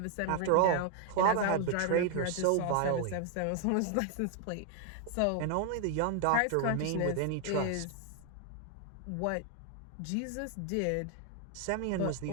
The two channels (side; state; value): both; different; correlation 0.00